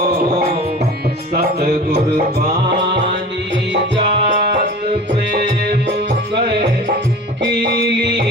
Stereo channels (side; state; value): both; normal; correlation 0.38